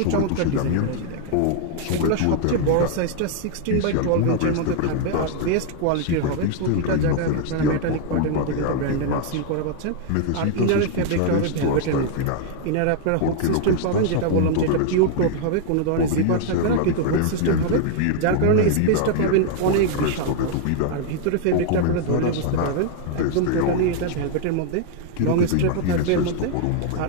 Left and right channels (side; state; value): both; different; correlation 0.00